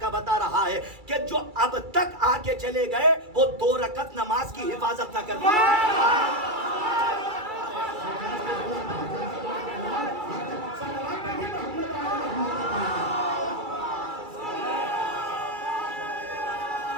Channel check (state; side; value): late; left; 2.3 ms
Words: بتا رہا ہے کہ جو اب تک آ کے چلے گئے وہ 2 رکعت نماز کی حفاظت نہ کر پائے.